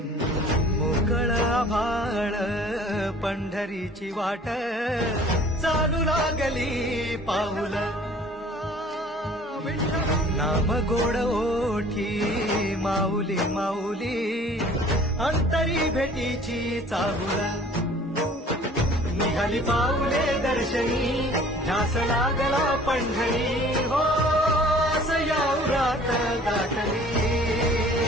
मोकळ आभाळ पंढरीची वाट चालू लागली पाऊल नाम गोड ओठी माऊली माऊली अंतरी भेटीची चाहुल निघाली पाऊले दर्शनी ध्यास लागला पंढरी हो सयावरात गाठली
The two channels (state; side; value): normal; both; correlation 0.50